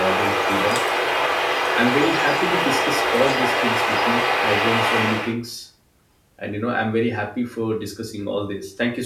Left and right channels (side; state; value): both; identical; correlation 1.00